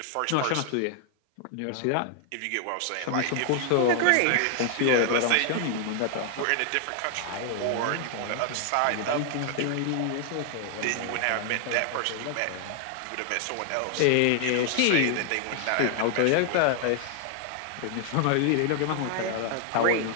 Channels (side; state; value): both; different; correlation 0.00